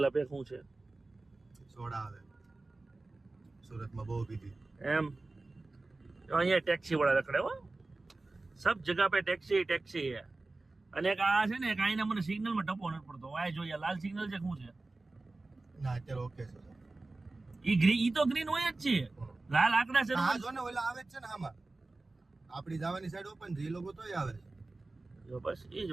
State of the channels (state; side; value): quieter; left; 3.2 dB